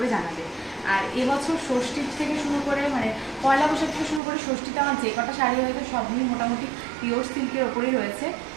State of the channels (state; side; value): drops out; left; at 4.2 s